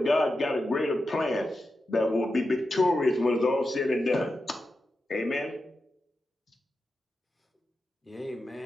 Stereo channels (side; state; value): both; normal; correlation 0.90